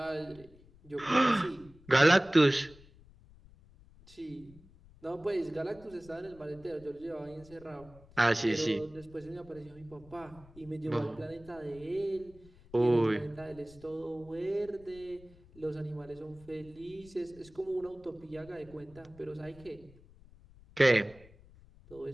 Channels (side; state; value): left; noise; rumble, 23 dB below the sound